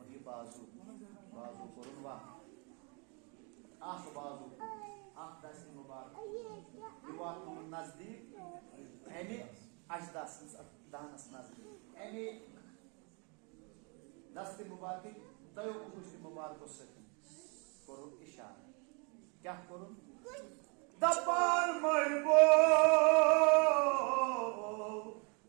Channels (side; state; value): left; quieter; 34.1 dB